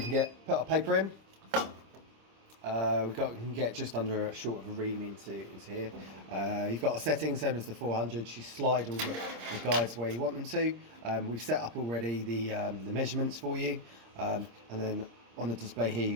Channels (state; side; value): late; left; 26 ms